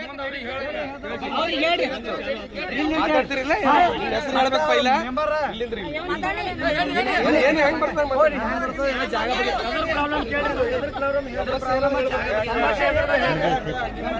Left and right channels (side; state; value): both; identical; correlation 1.00